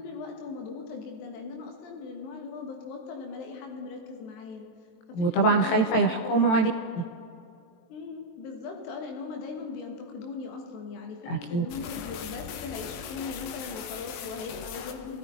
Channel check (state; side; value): late; right; 23 ms